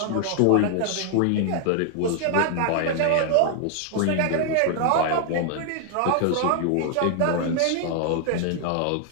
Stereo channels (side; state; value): both; different; correlation 0.00